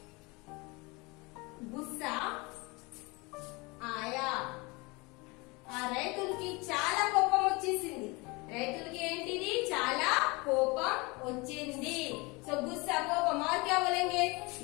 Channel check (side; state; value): right; quieter; 26.1 dB